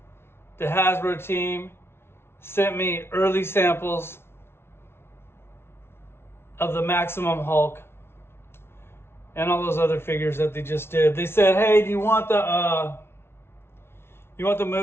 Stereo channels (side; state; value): right; late; 0.12 ms